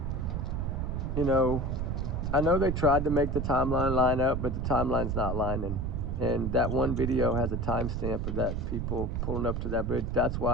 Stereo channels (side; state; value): right; noise; rumble, 1 dB below the sound